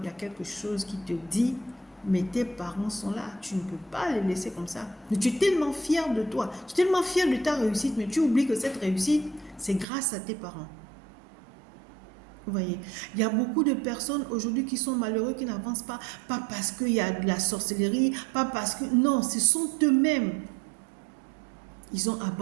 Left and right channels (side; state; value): left; drops out; at 9.9 s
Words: il y a quelque chose qui te dit mais tes parents sont là, tu ne peux pas les laisser comme ça. Mais tu es tellement fier de toi, tu es tellement fier de ta réussite, mais tu oublies que cette réussite, c'est grâce à tes parents. Vous voyez, il y a beaucoup de personnes aujourd'hui qui sont malheureux, qui n'avancent pas parce qu'il y a de la sorcellerie, pas parce que... Non, ce sont eux-mêmes. Ils ont